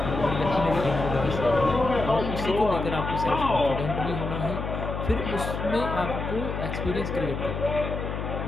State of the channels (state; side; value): noise; left; hum, 4 dB below the sound